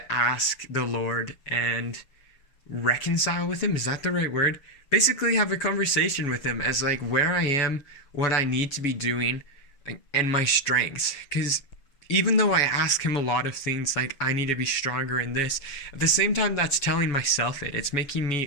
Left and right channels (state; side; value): late; right; 6.9 ms